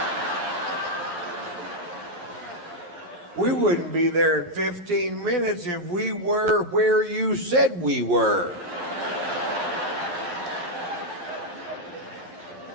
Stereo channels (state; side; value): late; left; 11 ms